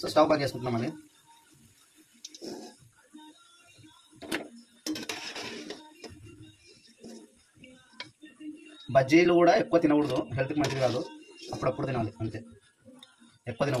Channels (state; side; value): identical; both; correlation 1.00